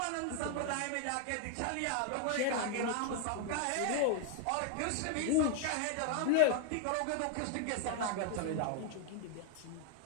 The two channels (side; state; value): both; different; correlation 0.00